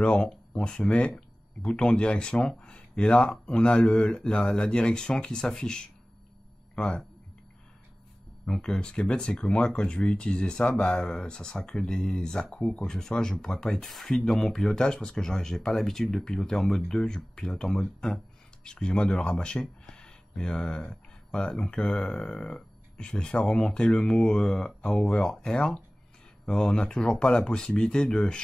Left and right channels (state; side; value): normal; both; correlation 0.98